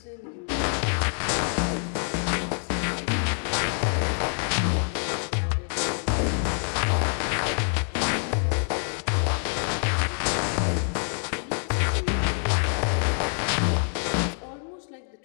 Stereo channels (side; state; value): right; silent; 61 dB below the other